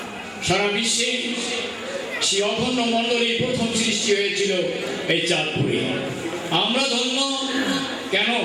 সারা বিশ্বে। সেই অখণ্ড মণ্ডলী প্রথম সৃষ্টি হয়েছিল এই চাঁদপুরে। আমরা ধন্য কেন?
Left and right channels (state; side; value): identical; both; correlation 1.00